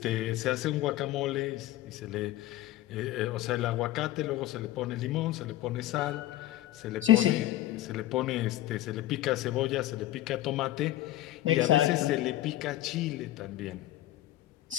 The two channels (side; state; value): right; quieter; 14.9 dB